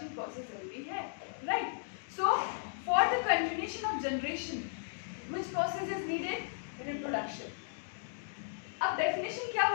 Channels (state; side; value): silent; right; digital silence